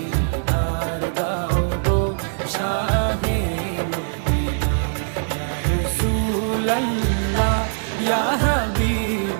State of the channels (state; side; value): silent; left; digital silence